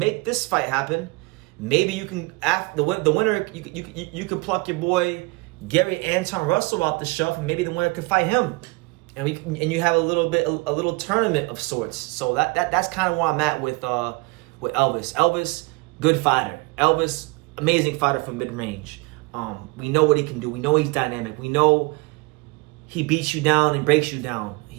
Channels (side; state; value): left; quieter; 25.8 dB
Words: this fight happen, maybe you can the winner you can pluck your boy Gary Anton Russell off the shelf, and maybe the winner could fight him. And you have a little tournament of sorts. So that's kind of where I'm at with Elvis. Elvis, good fighter. Elvis, amazing fighter from mid-range. We know what he can do. We know he's dynamic. We know he beats you down and breaks you down.